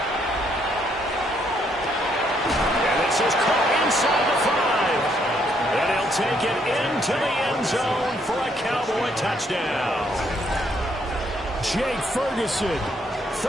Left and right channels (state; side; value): normal; both; correlation 0.71